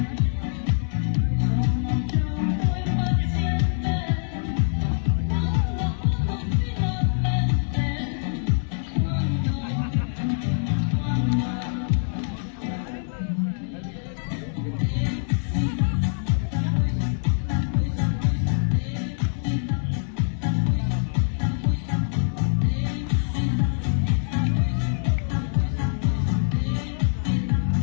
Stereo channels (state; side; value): silent; right; 62 dB below the other